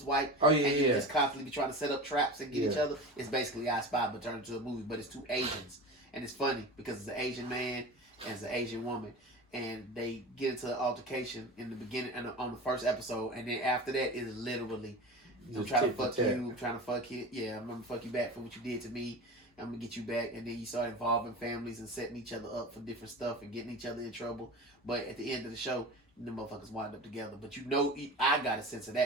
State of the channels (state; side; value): normal; both; correlation 0.31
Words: white. Oh, yeah, and you just constantly be trying to set up traps and get each other. It's basically I Spy, but turned into a movie. But it's 2 Asians. And it's funny because it's an Asian man and it's an Asian woman. And they get into an altercation in the beginning and on the first episode. And then after that, it is literally, I'm trying to fuck you, I'm trying to fuck you. Yeah, I'm going to fuck you back for what you did to me. I'm going to get you back. And then you start involving families and setting each other up for different stuff and getting each other in trouble. But at the end of the show, the motherfuckers wind up together. But you know, I got a sense of